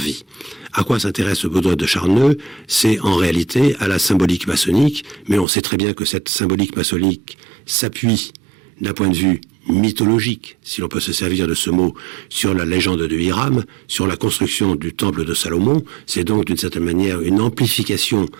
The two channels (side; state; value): left; drops out; at 5.5 s